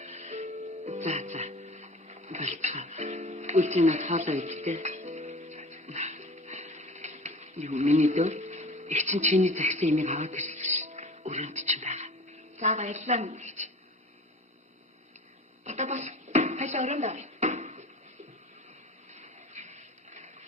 За. Болцоо. Үлцэнэ хаалаа идтэй. Юу миний дөө? Их чинь чиний загсан имийг аваад ирсэн ш. Өрөөнд чинь байгаа. За баярлалаа мэгч. Одоо бас хайлаа өрөөнд авъя.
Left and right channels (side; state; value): both; normal; correlation 0.39